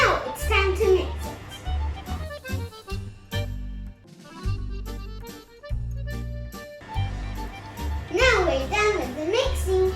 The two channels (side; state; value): both; identical; correlation 1.00